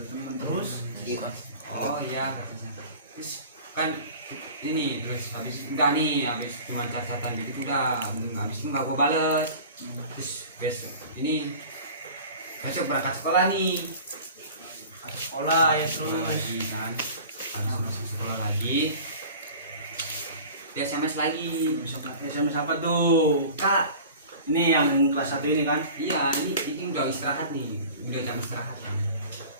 Terus Iya. Oh iya kata saya. Terus kan ini terus habis udah nih habis cuma catatan gitu udah habis itu nggak gua bales. Terus besok ini besok berangkat sekolah nih. ada sekolah ya Sekolah terus. lagi kan habis masuk sekolah lagi dia SMS lagi. SMS apa tuh? Kak Ini yang kelas 1 ini kan? iya ini udah istirahat nih udah jam istirahat kan.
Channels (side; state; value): both; inverted; correlation -0.41